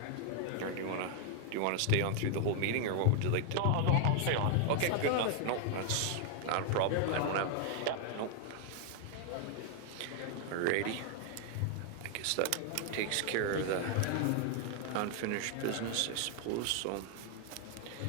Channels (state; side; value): different; both; correlation 0.00